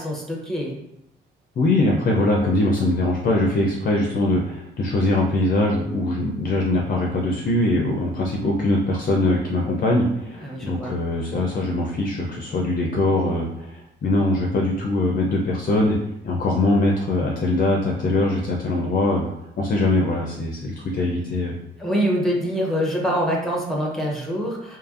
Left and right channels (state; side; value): normal; both; correlation 0.55